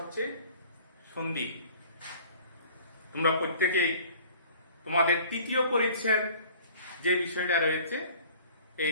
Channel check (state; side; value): inverted; both; correlation -0.50